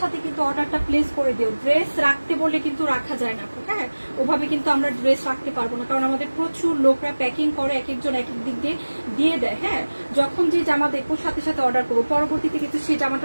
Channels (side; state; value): both; inverted; correlation -1.00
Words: কিন্তু অর্ডারটা প্লেস করে দিও। ড্রেস রাখতে বললে কিন্তু রাখা যায় না আপু। হ্যাঁ, ওভাবে কিন্তু আমরা ড্রেস রাখতে পারবো না, কারণ আমাদের প্রচুর লোকরা প্যাকিং করে, এক একজন এক এক দিক দিয়ে দেয়। হ্যাঁ, যখন যে জামা দেখবো সাথে সাথে অর্ডার করবো, পরবর্তীতে কিন্তু সেই